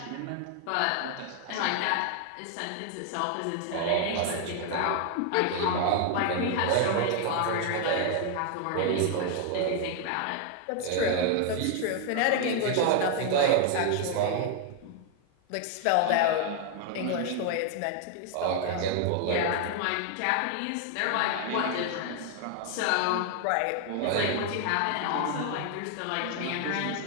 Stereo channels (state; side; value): different; both; correlation 0.00